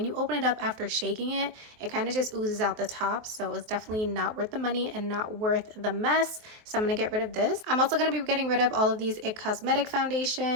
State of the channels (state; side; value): late; left; 23 ms